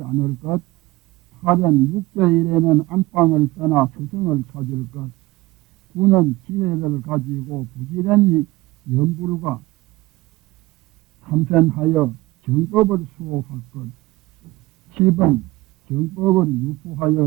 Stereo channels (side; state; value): left; quieter; 19.5 dB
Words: 않을 것, 8은 6제1에는 안방을 떠나 스승을 찾을 것, 9는 지혜를 가지고 부지런히 연불과 참선하여 정법을 수호할 것, 10은 정법을